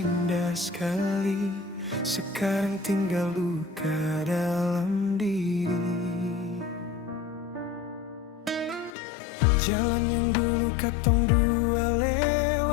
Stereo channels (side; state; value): right; drops out; at 8.9 s